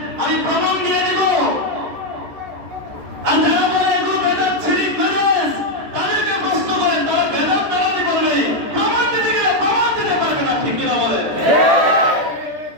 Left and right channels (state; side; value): late; left; 13 ms